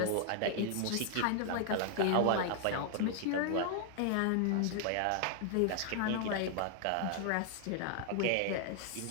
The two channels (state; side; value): different; both; correlation 0.00